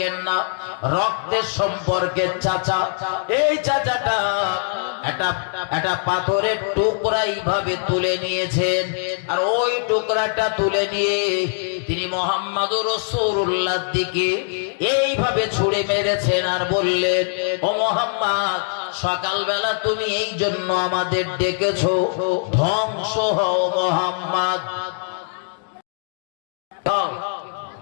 না, রক্তের সম্পর্কের চাচা। এই চাচাটা একটা পাথরের টুকরা এইভাবে তুলে নিয়েছেন, আর ওই টুকরাটা তুলে নিয়ে তিনি মুহাম্মদুর রাসূলুল্লাহর দিকে এইভাবে ছুঁড়ে মেরেছেন আর বললেন, ও মুহাম্মদ, সকালবেলা তুমি এই জন্য আমাদের ডেকেছো, ধ্বংস হও মুহাম্মদ।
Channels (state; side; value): silent; right; 64 dB below the other